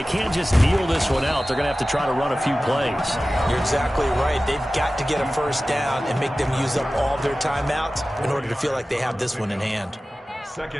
can't just kneel this one out. They're going to have to try to run a few plays. You're exactly right. They've got to get a first down and make them use up all their timeouts in order to feel like they have this one in hand.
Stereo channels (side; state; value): both; normal; correlation 0.96